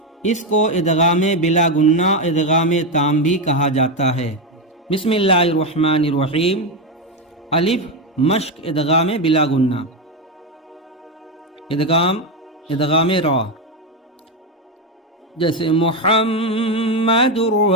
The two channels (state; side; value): normal; both; correlation 0.09